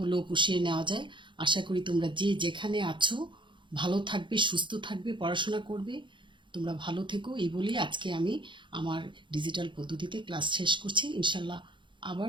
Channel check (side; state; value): left; late; 0.23 ms